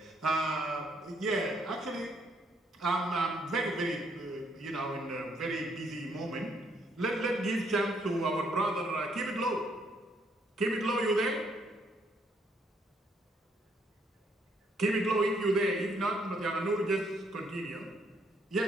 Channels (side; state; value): both; normal; correlation 0.70